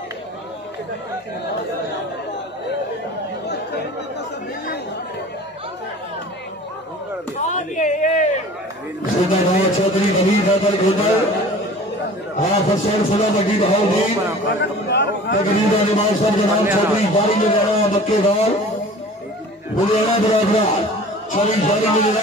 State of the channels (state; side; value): normal; both; correlation 0.43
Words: चौधरी बली गदल गोदल फसैन सदा बड़ी बहाउद्दीन तकरीबन इमाम साहब जनाब चौधरी बारी में जाना मक्केवाल बुलियाना बराबरा चौधरी बारी में जाना